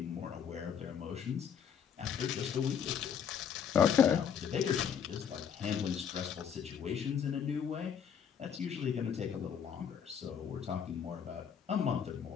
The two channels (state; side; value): quieter; right; 7.8 dB